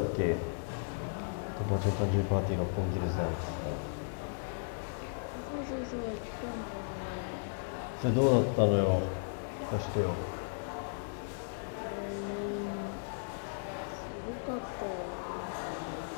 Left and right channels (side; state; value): right; silent; digital silence